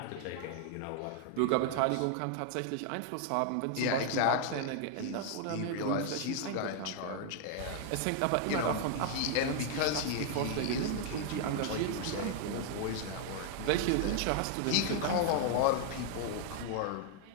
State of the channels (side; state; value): both; different; correlation 0.00